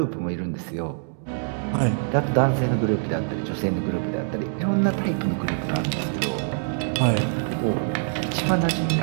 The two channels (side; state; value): left; silent; digital silence